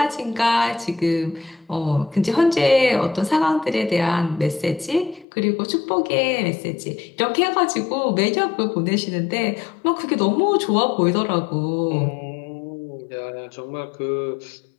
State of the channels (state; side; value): drops out; right; at 5.2 s